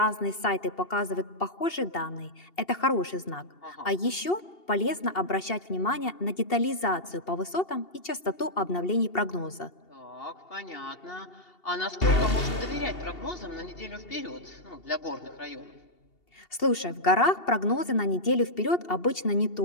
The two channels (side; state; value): right; late; 2.7 ms